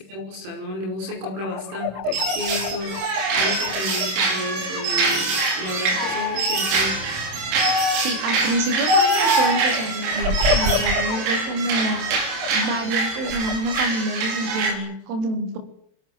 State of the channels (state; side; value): late; left; 27 ms